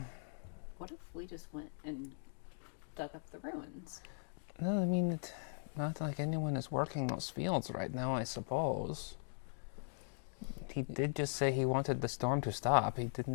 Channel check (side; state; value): right; silent; digital silence